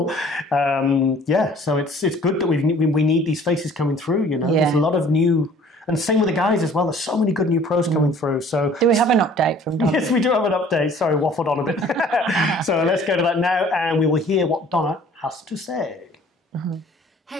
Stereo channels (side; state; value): both; normal; correlation 0.52